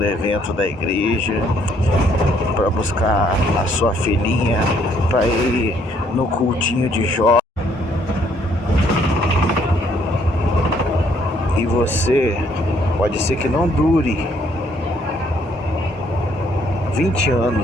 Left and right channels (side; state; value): both; normal; correlation 0.67